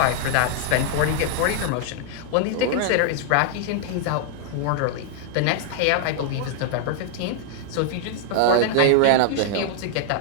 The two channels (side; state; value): both; different; correlation -0.01